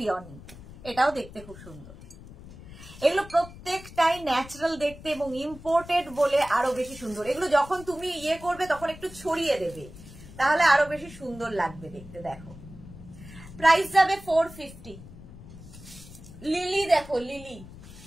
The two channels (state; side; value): noise; left; rumble, 17 dB below the sound